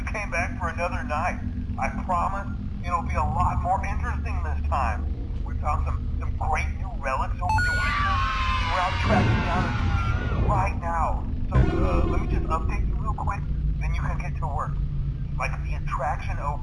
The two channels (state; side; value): identical; both; correlation 1.00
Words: came back for another night. I promise it'll be a lot more interesting this time. We found some great new relics over the weekend, and we're out tracking down a lead right now. So, let me just update you real quick, then you can get to work. Like, the attraction